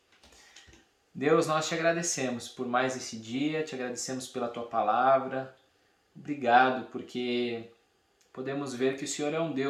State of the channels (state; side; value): identical; both; correlation 1.00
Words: Deus, nós te agradecemos por mais esse dia, te agradecemos pela tua palavra. Obrigado porque podemos ver que o Senhor é um